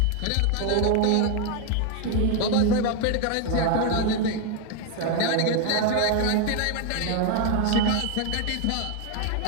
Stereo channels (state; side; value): different; both; correlation 0.01